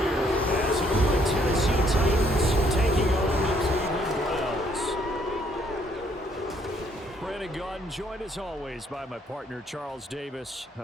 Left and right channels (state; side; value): normal; both; correlation 0.67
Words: here as the Tennessee Titans taking on the Cleveland Browns. Brandon Gaudin joined as always by my partner Charles Davis.